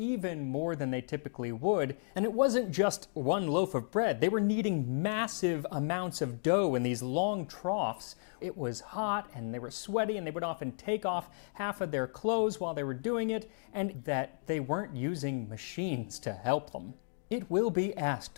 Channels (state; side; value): silent; right; digital silence